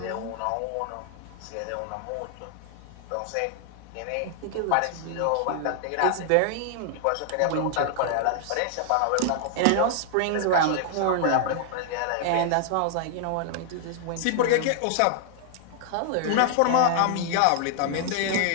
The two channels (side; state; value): both; different; correlation 0.00